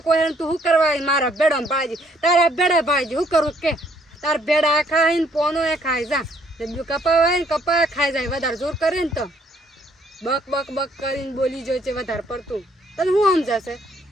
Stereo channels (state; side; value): normal; both; correlation 0.66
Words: કોઈ તું શું કરવા મારા ભેડા ભાજી તારા ભેડા ભાજી શું કરું કે તાર ભેડા ખાઈને પોનો એ ખાઈ જા કપા હોય ને કપા ખાઈ જાય વધારે જોર કરે ને તો બક કરીને બોલી જોઈ છે વધારે પડતું તને શું સમજાશે